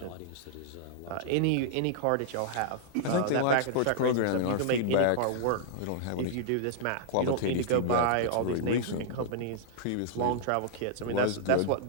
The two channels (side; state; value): both; different; correlation -0.01